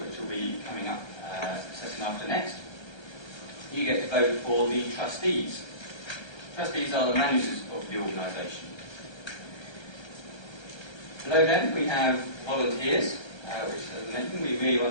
which will be coming up session after next. You get to vote for the trustees. Trustees are the managers of the organisation. Below them we have volunteers, which, as I mentioned, we really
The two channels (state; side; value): late; right; 1.3 ms